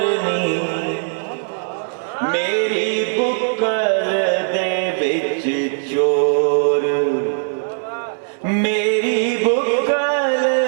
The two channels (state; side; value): silent; left; digital silence